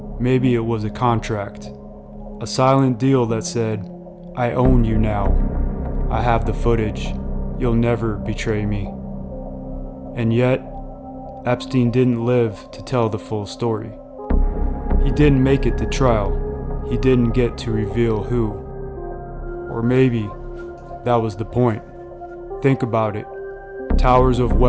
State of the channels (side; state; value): both; identical; correlation 1.00